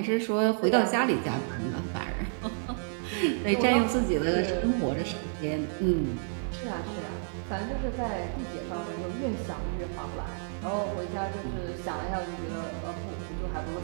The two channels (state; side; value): silent; left; digital silence